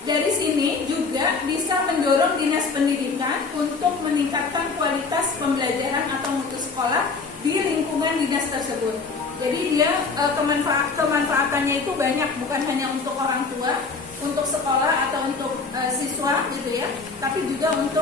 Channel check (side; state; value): right; quieter; 4.4 dB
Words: dari sini juga bisa mendorong dinas pendidikan untuk meningkatkan kualitas pembelajaran atau mutu sekolah di lingkungan dinas tersebut. Jadi dia kemanfaatannya itu banyak, bukan hanya untuk orang tua, untuk sekolah atau untuk siswa gitu ya, tapi juga